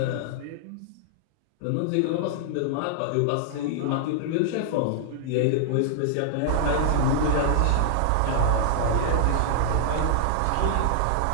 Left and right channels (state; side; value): different; both; correlation -0.01